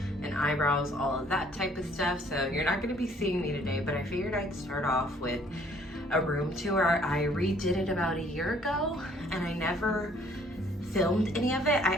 and eyebrows, all of that type of stuff. So you're not going to be seeing me today, but I figured I'd start off with a room tour. I redid it about a year ago and I never filmed any of it. I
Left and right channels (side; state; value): both; normal; correlation 0.60